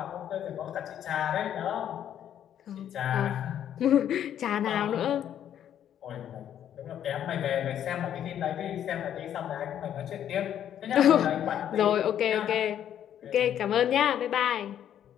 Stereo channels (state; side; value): quieter; right; 10.1 dB